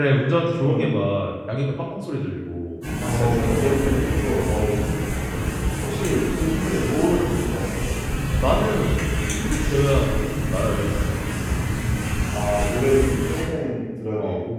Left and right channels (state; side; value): identical; both; correlation 1.00